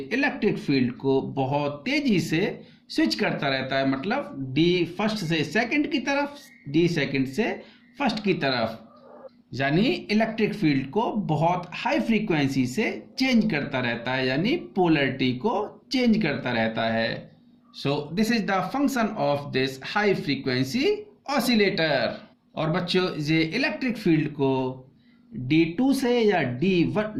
इलेक्ट्रिक फील्ड को बहुत तेजी से स्विच करता रहता है, मतलब डी फर्स्ट से सेकंड की तरफ, डी सेकंड से फर्स्ट की तरफ, यानी इलेक्ट्रिक फील्ड को बहुत हाई फ्रीक्वेंसी से चेंज करता रहता है, यानी पोलरिटी को चेंज करता रहता है। So this is the function of this high frequency oscillator. और बच्चों ये इलेक्ट्रिक फील्ड को D2 से या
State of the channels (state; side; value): identical; both; correlation 1.00